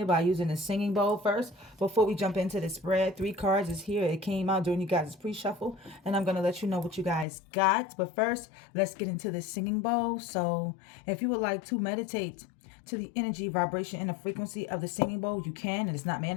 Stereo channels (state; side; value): drops out; right; at 7.2 s